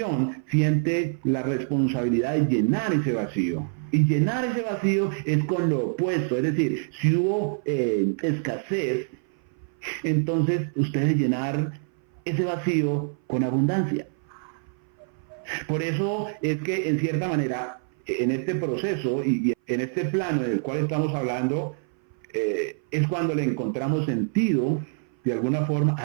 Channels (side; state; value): left; silent; 58 dB below the other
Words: siente la responsabilidad de llenar ese vacío. Y llenar ese vacío es con lo opuesto, es decir, si hubo escasez, entonces usted debe llenar ese vacío con abundancia. Por eso es que en cierta manera, en este proceso y en este plano en el cual estamos hablando, es cuando le encontramos sentido, de alguna forma,